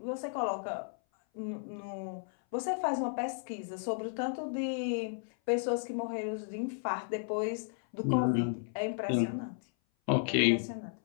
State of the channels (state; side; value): silent; right; 55 dB below the other